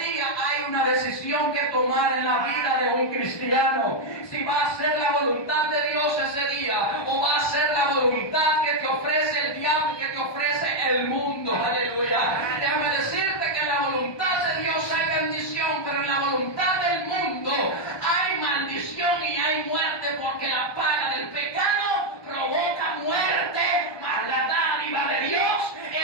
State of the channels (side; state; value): right; late; 1.2 ms